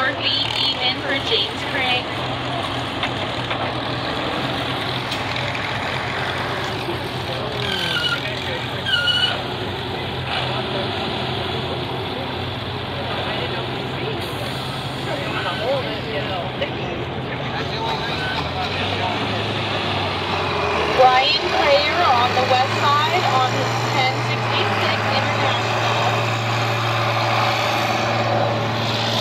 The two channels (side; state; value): both; identical; correlation 1.00